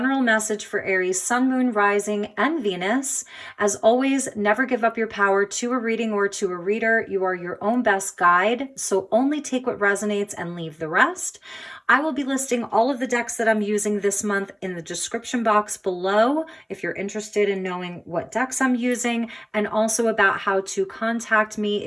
message for Aries, Sun, Moon, Rising, and Venus. As always, never give up your power to a reading or to a reader. You are your own best guide, so only take what resonates and leave the rest. I will be listing all of the decks that I'm using this month in the description box below if you're interested in knowing what decks I'm using, and also about how to contact me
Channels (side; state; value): both; identical; correlation 1.00